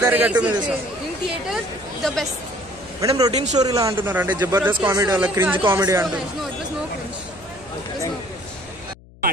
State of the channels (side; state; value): left; noise; hum, 23 dB below the sound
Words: గట్టు మీద in theatre the best. Madam routine story లా అంటున్నారు, అంటే జబర్దస్త్ కామెడీ అలా క్రింజ్ కామెడీ అంటున్నారు.